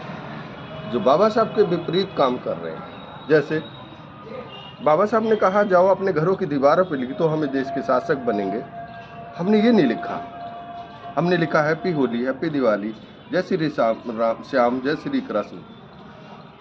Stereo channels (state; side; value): identical; both; correlation 1.00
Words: जो बाबा साहब के विपरीत काम कर रहे हैं। जैसे बाबा साहब ने कहा जाओ अपने घरों की दीवारों पर लिख दो हमें देश के शासक बनेंगे। हमने ये नहीं लिखा, हमने लिखा हैप्पी होली, हैप्पी दिवाली, जय श्री श्याम, जय श्री कृष्ण,